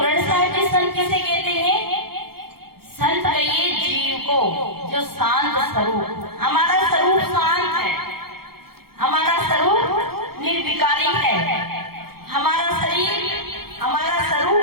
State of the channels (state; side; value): late; left; 0.94 ms